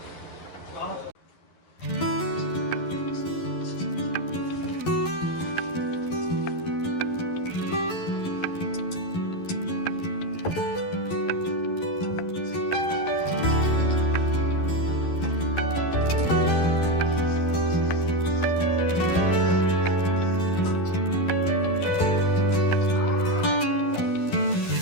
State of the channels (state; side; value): late; right; 11 ms